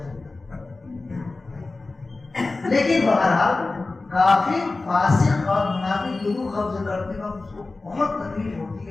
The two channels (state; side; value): quieter; right; 3.4 dB